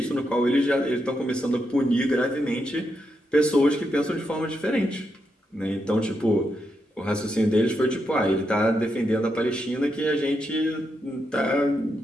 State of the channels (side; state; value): both; normal; correlation 0.83